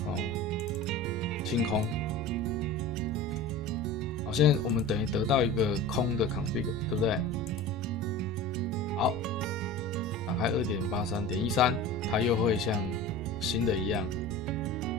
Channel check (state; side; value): normal; both; correlation 0.34